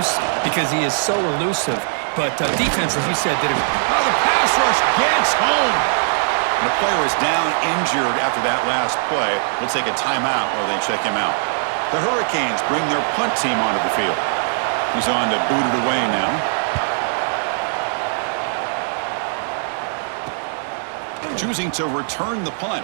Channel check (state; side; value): silent; left; digital silence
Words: because he is so elusive. But defense, as you said, did a... Oh, the pass rush gets home. And the player is down injured after that last play. We'll take a timeout while they check him out. The Hurricanes bring their punt team onto the field. He's on to boot it away now. Choosing to return the punt.